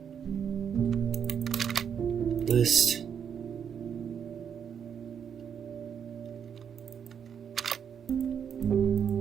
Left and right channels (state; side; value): quieter; left; 7.8 dB